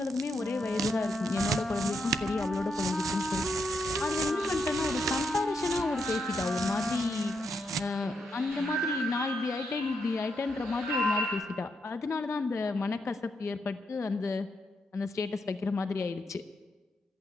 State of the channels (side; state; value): both; normal; correlation 0.81